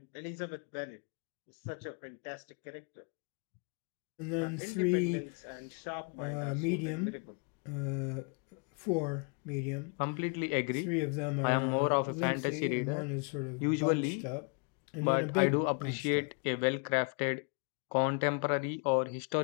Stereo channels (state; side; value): quieter; right; 36.9 dB